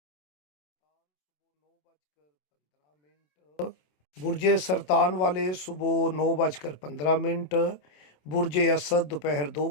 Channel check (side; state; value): right; late; 27 ms